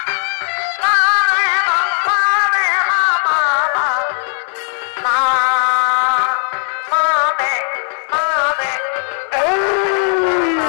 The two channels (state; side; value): silent; right; 58 dB below the other